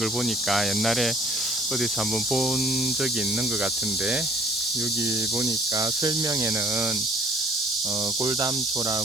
보니까 옛날에 어디서 한번 본 적이 있는 것 같은데, 여기 보니까 설명에는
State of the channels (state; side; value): normal; both; correlation 0.55